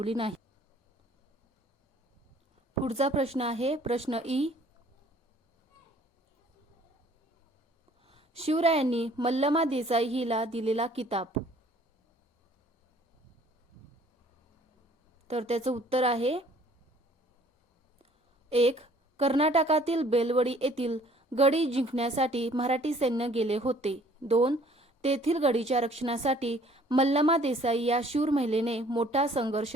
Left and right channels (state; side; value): normal; both; correlation 0.56